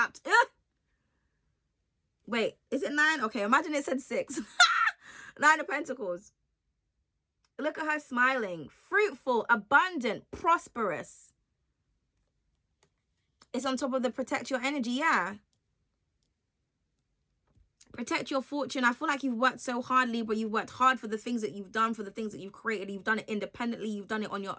Ugh. Wait, is it 9? Okay, imagine it said 6. 9 of Pentacles. Look at her smiling. Fruitful, abundant, prosperous. It's on top of the protect your energy, yeah. Protect your fortune. I feel like you've worked so hard, Libra. You've worked hard for the things that you've done, for the things that you've created. You've done it independently. You've done it on your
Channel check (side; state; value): both; identical; correlation 1.00